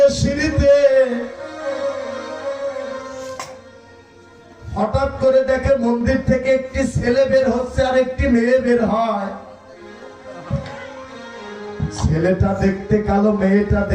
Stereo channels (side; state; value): both; identical; correlation 1.00